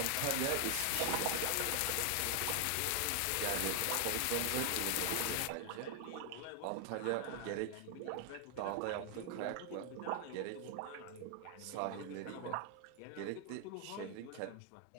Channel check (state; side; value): different; both; correlation 0.00